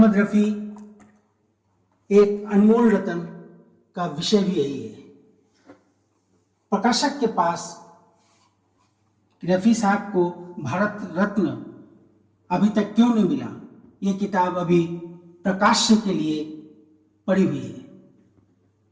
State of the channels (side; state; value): both; identical; correlation 1.00